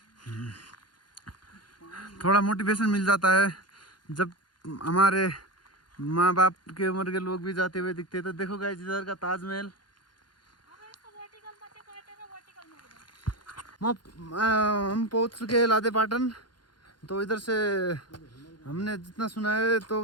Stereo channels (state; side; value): late; right; 0.71 ms